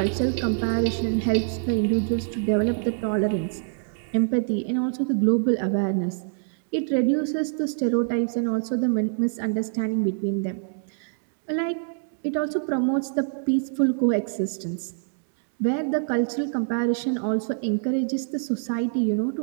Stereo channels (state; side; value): silent; left; digital silence